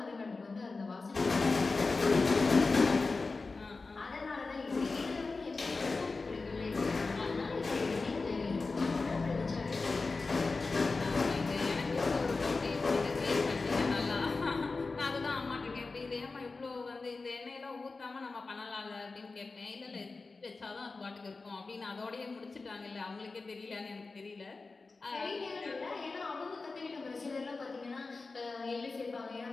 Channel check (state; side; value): quieter; right; 3.9 dB